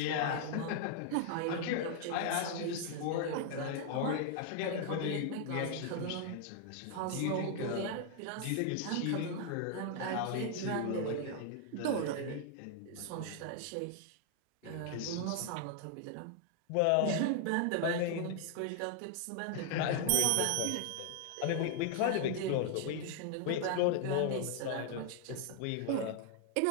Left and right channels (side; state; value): both; different; correlation 0.00